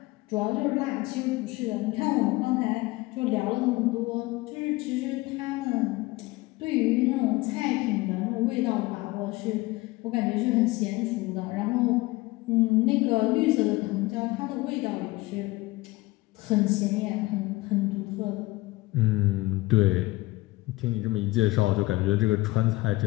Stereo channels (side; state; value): right; quieter; 20.6 dB